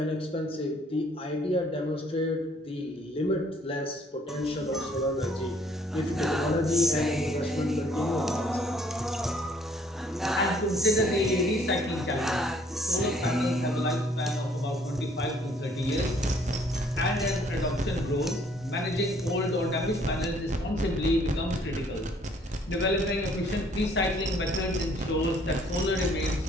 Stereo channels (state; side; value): normal; both; correlation 0.62